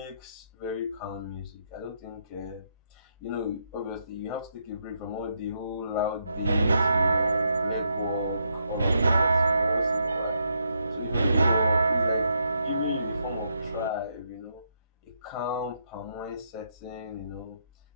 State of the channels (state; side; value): inverted; both; correlation -0.78